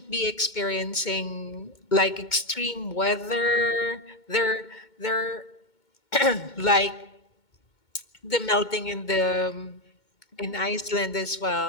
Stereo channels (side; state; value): right; late; 2.2 ms